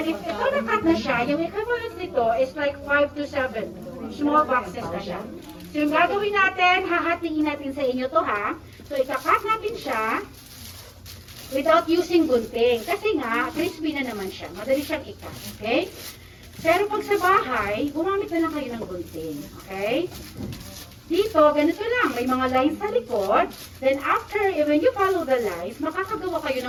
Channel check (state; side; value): identical; both; correlation 1.00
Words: if ito nakat na siya, yung equivalent nito is like 5 to 7 small boxes na siya. So yung gagawin natin, hahatiin natin sa inyo to ha. So ikakat natin siya without using gunting. Kasi nga, crispy na naman siya. Madali siyang ikat. Okay? Pero pag sa bahay, gumamit na lang kayo ng gunting. Okay? Dito, ganito lang. May mga lines sa likod. Then after, when you follow the lines, makakagawa kayo